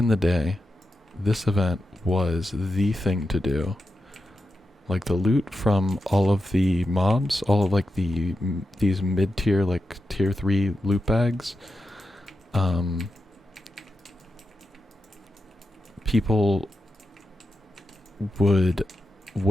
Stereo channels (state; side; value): normal; both; correlation 0.89